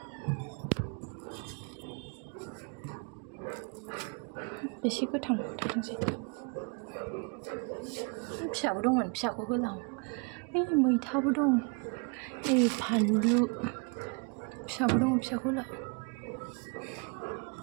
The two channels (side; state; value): left; quieter; 34.7 dB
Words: एसे गोथां थाथोंसै फिसाबो दंमोन फिसाखौ होलां मैथाबो दं नैबे फानलु फिसाबो दङ फिसाखौ होला